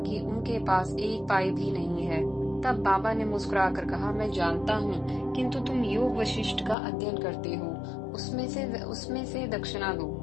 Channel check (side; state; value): right; drops out; at 6.8 s